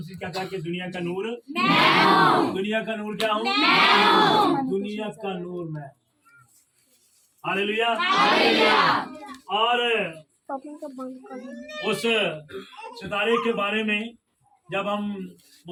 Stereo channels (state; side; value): identical; both; correlation 1.00